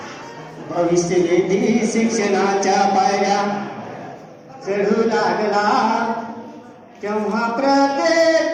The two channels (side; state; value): both; identical; correlation 1.00